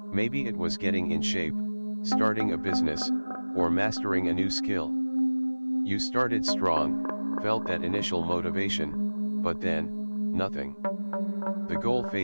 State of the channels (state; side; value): inverted; both; correlation -1.00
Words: it was getting in shape, starting a business, or mastering a new skill. You started strong, felt that initial motivation, but then, nothing. The goal